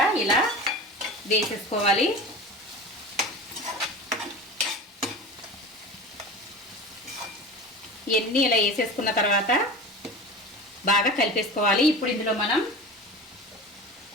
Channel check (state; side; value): normal; both; correlation 0.32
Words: ఇలా వేసేసుకోవాలి. ఇవన్నీ ఇలా వేసేసుకున్న తర్వాత బాగా కలిపేసుకోవాలి. ఇప్పుడు ఇందులో మనం